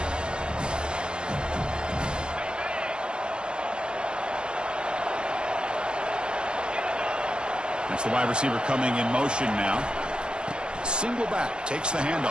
That's the wide receiver coming in motion now. Single back, takes the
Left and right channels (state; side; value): late; left; 0.051 ms